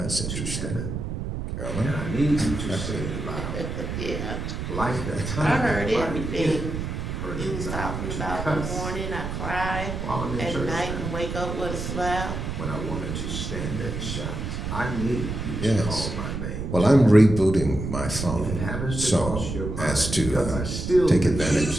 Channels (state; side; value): noise; right; rumble, 4 dB below the sound